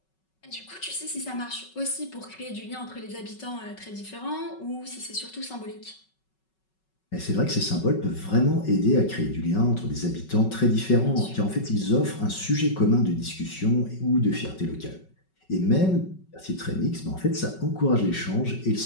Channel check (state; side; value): late; right; 5.3 ms